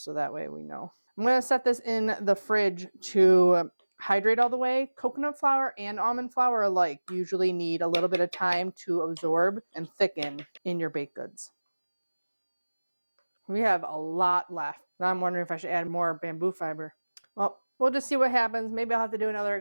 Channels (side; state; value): both; inverted; correlation -1.00